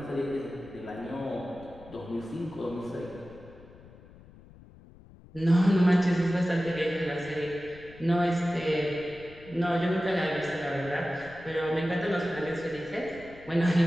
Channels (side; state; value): left; noise; rumble, 21 dB below the sound